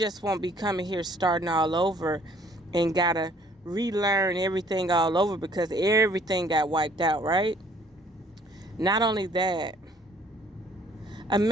won't be coming here starting all over and gotta relearn everything all over because everything got wiped out, right? Not only that,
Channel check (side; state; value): both; normal; correlation 0.58